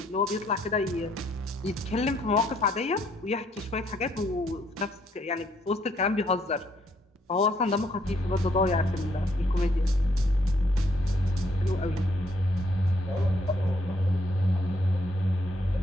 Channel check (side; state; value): both; normal; correlation 0.70